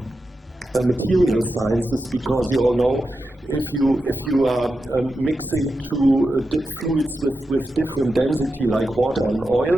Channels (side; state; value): both; normal; correlation 0.89